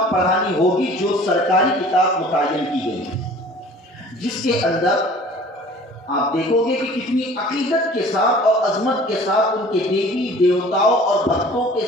پڑھانی ہوگی جو سرکاری کتاب متعین کی گئی ہے، جس کے اندر آپ دیکھو گے کہ کتنی عقیدت کے ساتھ اور عظمت کے ساتھ ان کے دیوی دیوتاؤں اور بھکتوں کے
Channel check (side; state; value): both; normal; correlation 0.47